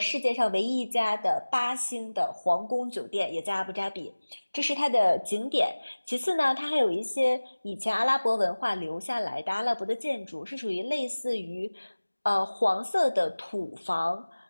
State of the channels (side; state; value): both; inverted; correlation -1.00